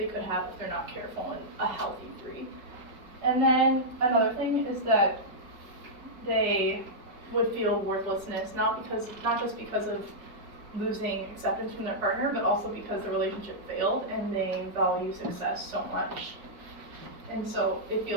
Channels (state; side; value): late; left; 4.8 ms